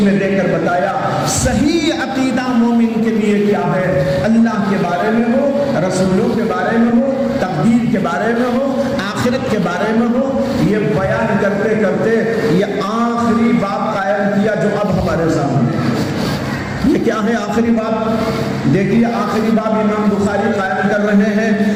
میں دے کر بتایا صحیح عقیدہ مومن کے لیے کیا ہے، اللہ کے بارے میں ہو، رسولوں کے بارے میں ہو، تقدیر کے بارے میں ہو، آخرت کے بارے میں ہو۔ یہ بیان کرتے کرتے یہ آخری باب قائم کیا جو اب ہمارے سامنے ہے۔ یہ کیا ہے آخری باب؟ دیکھیے آخری باب امام بخاری قائم کر رہے ہیں،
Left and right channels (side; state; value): both; identical; correlation 1.00